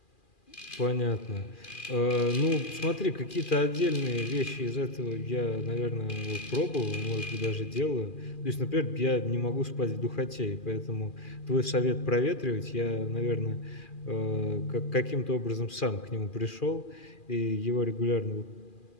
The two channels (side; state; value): right; late; 2.4 ms